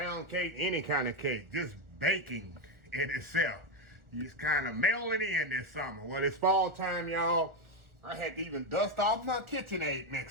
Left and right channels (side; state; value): left; late; 1.5 ms